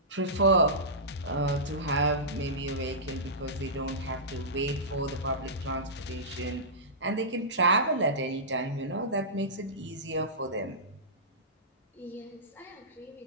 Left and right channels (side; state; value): both; normal; correlation -0.18